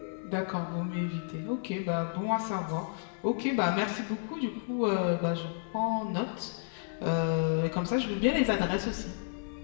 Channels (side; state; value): right; silent; digital silence